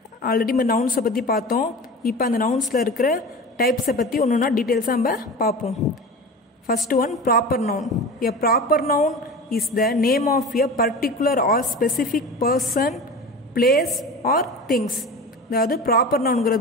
Already நம்ம நவுன்ஸை பற்றி பார்த்தோம். இப்போ அந்த நவுன்ஸில் இருக்கிற டைப்ஸை பற்றி ஒன்று ஒன்றா டீட்டெயில்ஸாக நம்ம பார்ப்போம். First one, proper noun. A proper noun is the name of a particular or specific person, place or things. அதாவது ப்ராப்பர்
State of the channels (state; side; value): normal; both; correlation 0.33